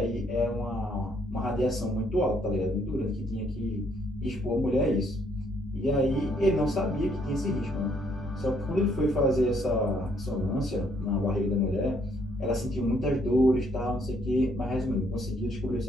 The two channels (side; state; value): both; normal; correlation 0.68